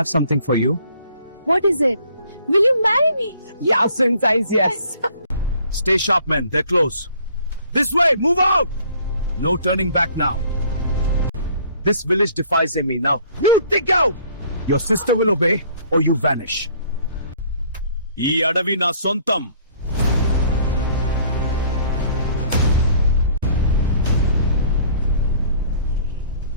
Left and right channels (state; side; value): inverted; both; correlation -0.57